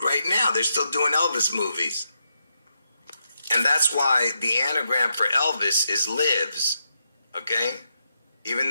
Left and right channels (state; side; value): inverted; both; correlation -0.82